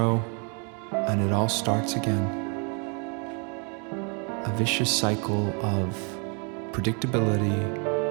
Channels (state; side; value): quieter; left; 36.3 dB